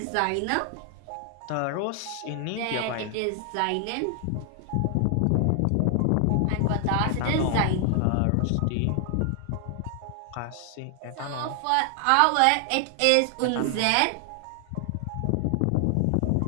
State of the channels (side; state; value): both; different; correlation 0.00